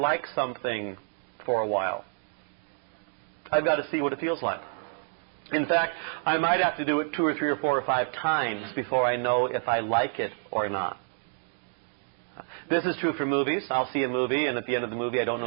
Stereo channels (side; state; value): left; silent; digital silence